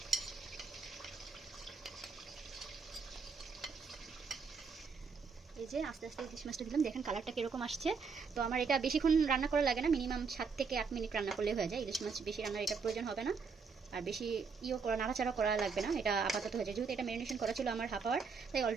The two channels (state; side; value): quieter; left; 5.3 dB